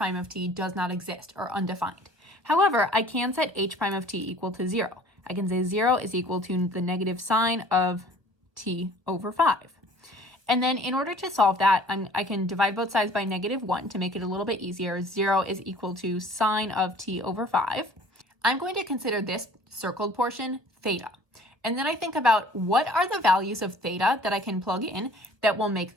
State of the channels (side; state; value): left; late; 1.3 ms